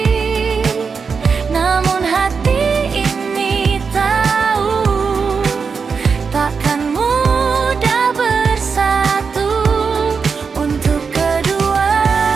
namun hati ini tahu takkan mudah bersatu. Untuk kedua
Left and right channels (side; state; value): left; quieter; 5.4 dB